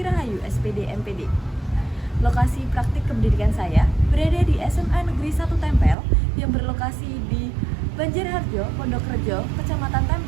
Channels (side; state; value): left; drops out; at 6.0 s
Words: Rahayu, SPD MPD. Lokasi praktik kependidikan saya berada di SMA Negeri 1 Tempel yang berlokasi di Banjarharjo, Pondokrejo, Kecamatan